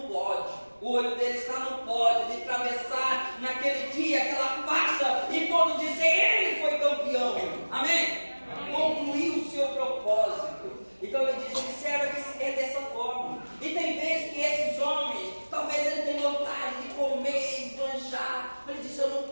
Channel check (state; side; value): inverted; both; correlation -1.00